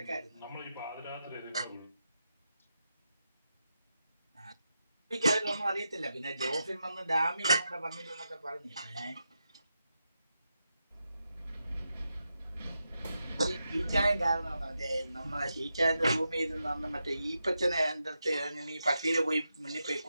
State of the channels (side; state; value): both; inverted; correlation -0.87